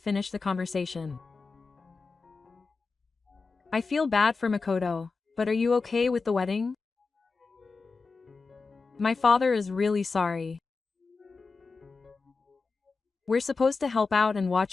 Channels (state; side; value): quieter; right; 4.3 dB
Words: the conversation. I feel bad for Makoto, but are you okay with the wedding? My father is really sorry. We're supposed to help out and